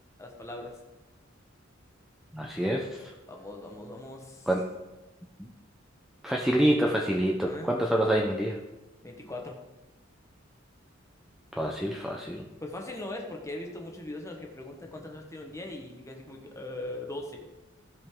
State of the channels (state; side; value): normal; both; correlation 0.81